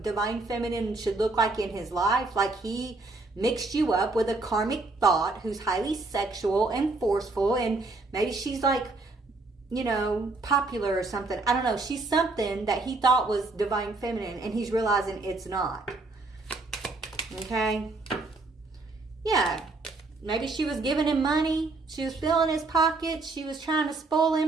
divine feminine should look like in his life. Like he mixed you up with a karmic thought who's highly sexual and forceful, and maybe she's like, you know, popular or something. I don't know. She's something that he thought was divine feminine, and he's realizing it's not. Okay? Yeah. Maybe she was giving him money. She was filling his pockets. She was trying to spoil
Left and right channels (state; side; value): quieter; left; 3.4 dB